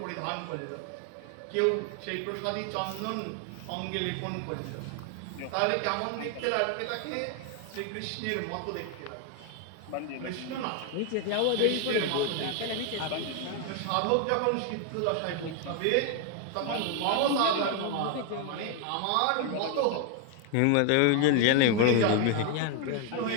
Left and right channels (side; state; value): both; different; correlation 0.01